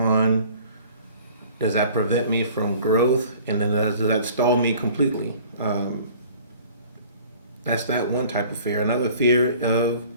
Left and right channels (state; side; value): inverted; both; correlation -0.50